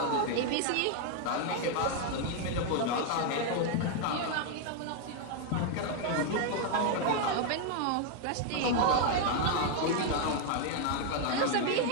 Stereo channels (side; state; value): both; different; correlation 0.00